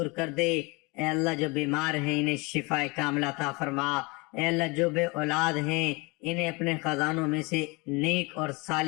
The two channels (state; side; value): quieter; right; 27.2 dB